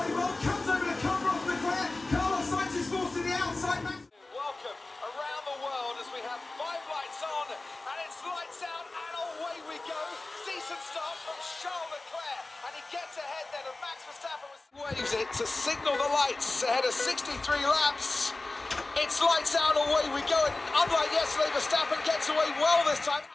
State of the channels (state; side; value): quieter; right; 3.1 dB